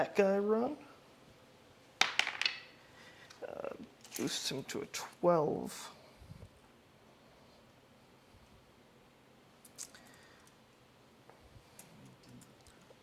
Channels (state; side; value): identical; both; correlation 1.00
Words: guy run. Boost him to a 12.